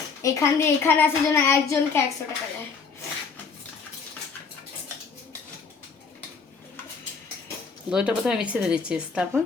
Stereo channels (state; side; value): quieter; right; 5.2 dB